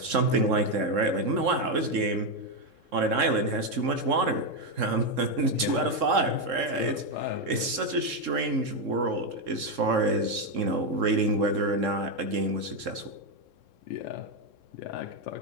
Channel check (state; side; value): late; left; 3.7 ms